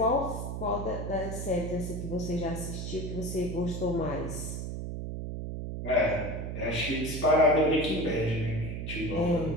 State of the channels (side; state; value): right; noise; hum, 5 dB below the sound